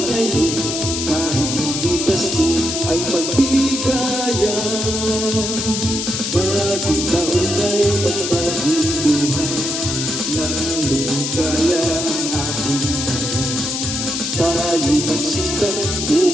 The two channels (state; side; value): noise; left; hiss, 3 dB below the sound